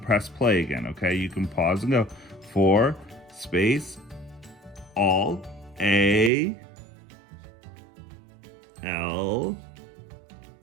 play again, okay? You can pause and go. For, space, all, A, L,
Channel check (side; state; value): left; drops out; at 6.3 s